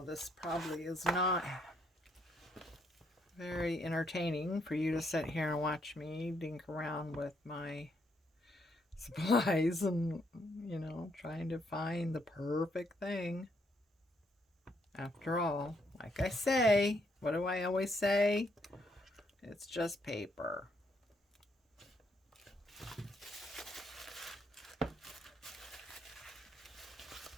this probably is not very entertaining for you to sit here and watch me dink around with my supplies and, you know, trying to find the perfect thing. After all, like I say, what do I always say? It's just paper.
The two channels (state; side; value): normal; both; correlation 0.73